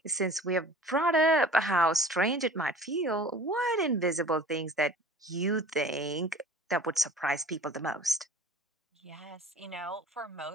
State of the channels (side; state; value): both; normal; correlation 0.44